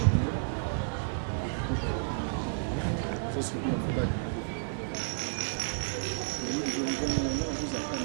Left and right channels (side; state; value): left; silent; digital silence